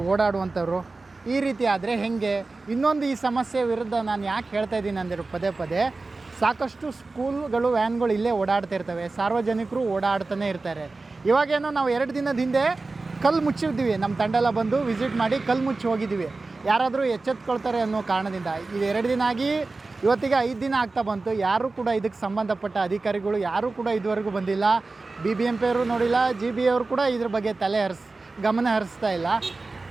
ಓಡಾಡುವಂಥವ್ರು. ಈ ರೀತಿ ಆದರೆ ಹೇಗೆ? ಇನ್ನೊಂದು ಈ ಸಮಸ್ಯೆ ವಿರುದ್ಧ ನಾನು ಯಾಕೆ ಹೇಳ್ತಾ ಇದ್ದೀನಿ ಅಂದರೆ ಪದೇ ಪದೇ ಸಾಕಷ್ಟು ಸ್ಕೂಲ್ಗಳು ವ್ಯಾನ್ಗಳು ಇಲ್ಲೇ ಓಡಾಡ್ತಾ ಇರ್ತವೆ, ಸಾರ್ವಜನಿಕರು ಓಡಾಡ್ತಾನೆ ಇರ್ತಾರೆ. ಇವಾಗೇನೋ ನಾವು 2 ದಿನದ ಹಿಂದೆ ಕಲ್ಲು ಮುಚ್ಚಿದ್ದೀವಿ, ನಮ್ಮ ತಂಡ ಎಲ್ಲ ಬಂದು ವಿಸಿಟ್ ಮಾಡಿ ಕಲ್ಲು ಮುಚ್ಚಿ ಹೋಗಿದ್ದೀವಿ. ಯಾರಾದರೂ ಎಚ್ಚೆತ್ಕೊಳ್ತಾರೆ ಅನ್ನೋ ಕಾರಣದಿಂದ ಇದು 2 ದಿನ ಆಗಿ ಇವತ್ತಿಗೆ 5 ದಿನ ಆಗ್ತಾ ಬಂತು. ಯಾರೂ ಕೂಡ ಇದಕ್ಕೆ ಸಂಬಂಧಪಟ್ಟ ಅಧಿಕಾರಿಗಳು ಯಾರೂ ಕೂಡ ಇದುವರೆಗೂ ಬಂದಿಲ್ಲ. BBMP ಅವರು ನೋಡಿಲ್ಲ, GB ಅವರು ಕೂಡ ಇದ್ರ ಬಗ್ಗೆ ಗಮನ ಹರಿಸ್ತಾ ಇಲ್ಲ.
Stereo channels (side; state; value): left; quieter; 3.6 dB